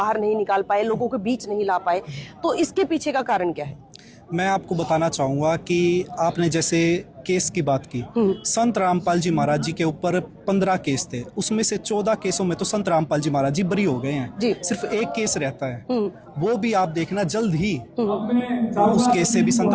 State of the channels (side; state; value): both; identical; correlation 1.00